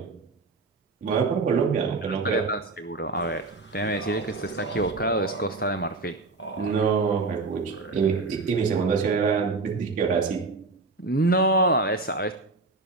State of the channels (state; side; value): quieter; left; 3.6 dB